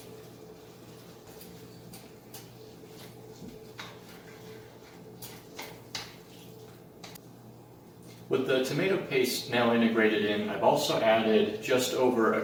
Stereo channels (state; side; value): identical; both; correlation 1.00